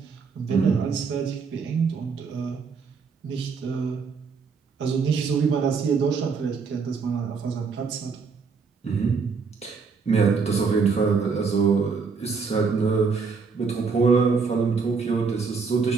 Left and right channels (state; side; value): quieter; left; 5.2 dB